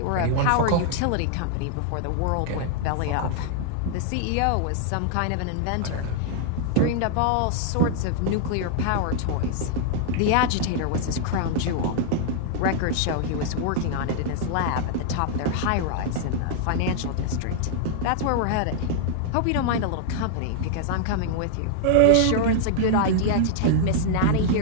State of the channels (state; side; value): different; both; correlation -0.01